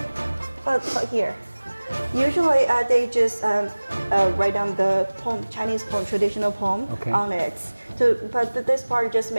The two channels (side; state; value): both; inverted; correlation -1.00